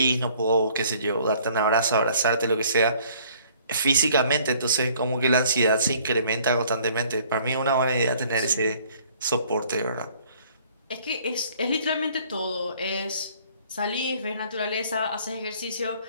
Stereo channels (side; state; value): both; inverted; correlation -0.57